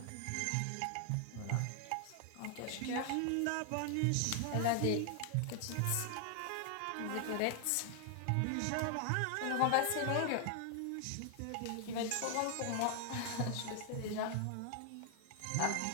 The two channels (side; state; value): both; different; correlation 0.00